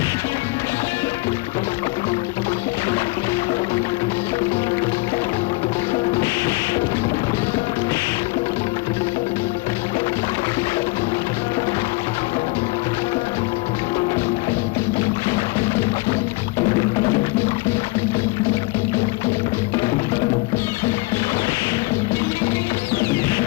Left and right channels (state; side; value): quieter; right; 23.2 dB